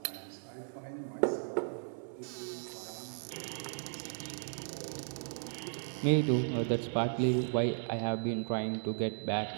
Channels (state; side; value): silent; left; 54 dB below the other